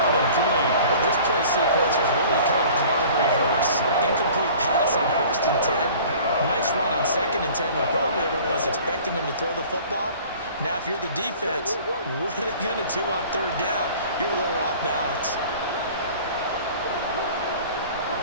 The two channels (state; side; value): inverted; both; correlation -0.47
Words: and 3. Well, this play sequence was really kind of called in reverse. Incomplete pass on 1st and 10. Nice run on 2nd and 10 when probably everyone was expecting him to throw the football. Now, if you're the defense, what are they going to do on 3rd down? You're a little off balance.